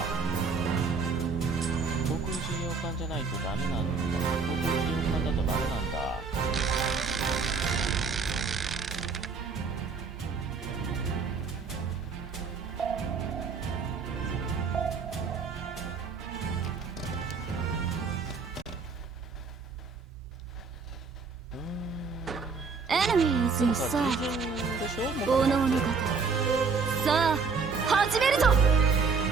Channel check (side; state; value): left; quieter; 5.0 dB